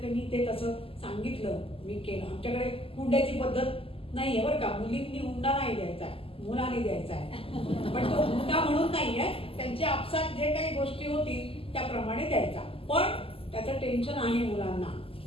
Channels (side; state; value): right; late; 0.27 ms